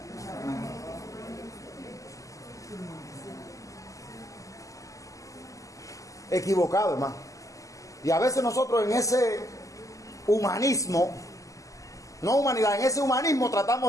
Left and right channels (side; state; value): right; late; 0.16 ms